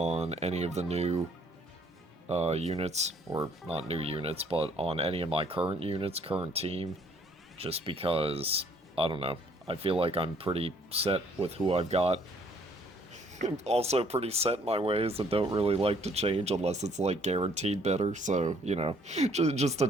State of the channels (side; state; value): both; normal; correlation 0.62